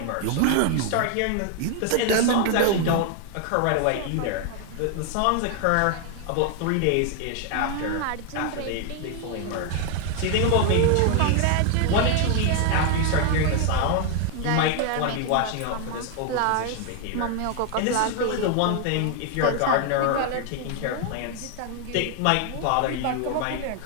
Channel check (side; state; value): both; different; correlation 0.01